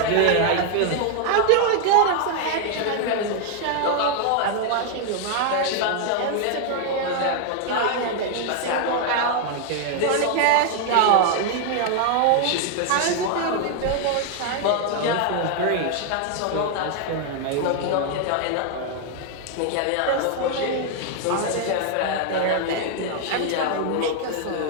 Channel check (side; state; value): both; different; correlation 0.00